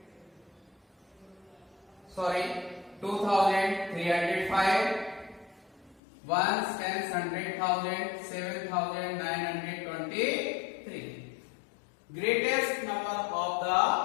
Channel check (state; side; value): drops out; right; at 6.0 s